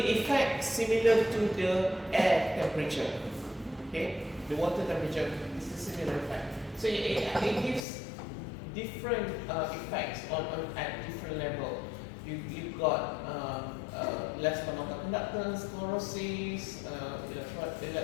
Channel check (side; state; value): right; drops out; at 7.9 s